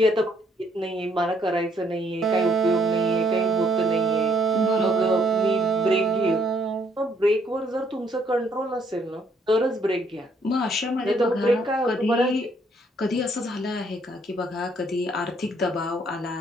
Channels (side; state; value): both; normal; correlation 0.68